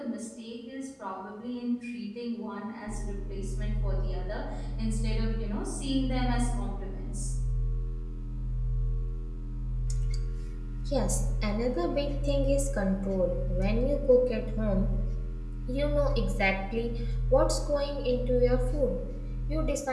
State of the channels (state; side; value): identical; both; correlation 1.00